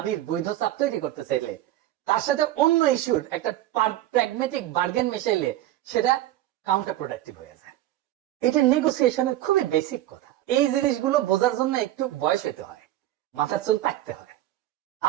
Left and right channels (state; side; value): quieter; left; 14.2 dB